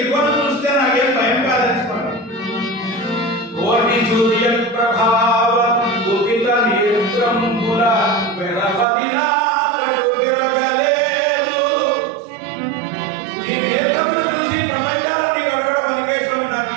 చూస్తే నాకేం భయం కాదనిసుకోండి. కోటి సూర్య ప్రభావ కుపిత నేత్రంబుల వెరపదిలా వెరగలేదు. నీ నేత్రములు చూసి ప్రపంచాన్ని గడవడం అనికేశం నాకు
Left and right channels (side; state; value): left; drops out; at 8.8 s